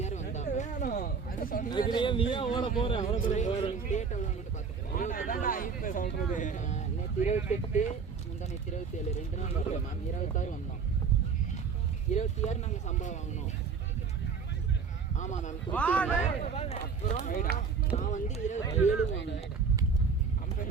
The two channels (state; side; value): quieter; left; 5.6 dB